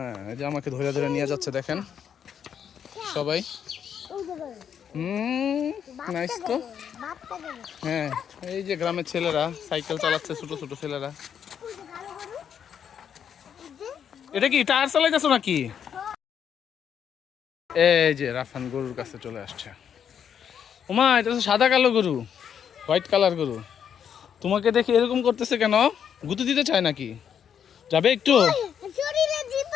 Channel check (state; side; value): quieter; right; 8.2 dB